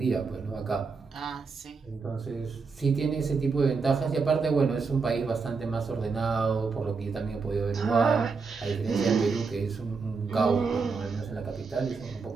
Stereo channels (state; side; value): quieter; left; 4.8 dB